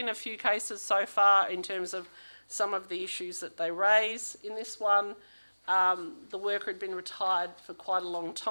a few cases so far in terms of some of the issues that they raise. In this one, the worker had been retired for quite a long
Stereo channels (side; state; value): both; inverted; correlation -1.00